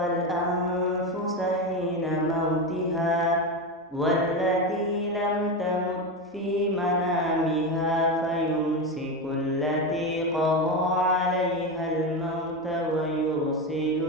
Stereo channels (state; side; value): normal; both; correlation 0.16